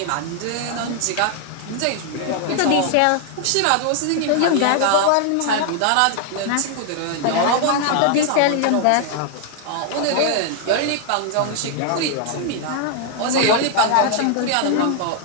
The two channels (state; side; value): different; both; correlation 0.00